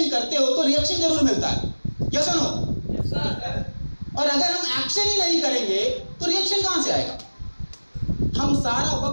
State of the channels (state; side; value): inverted; both; correlation -1.00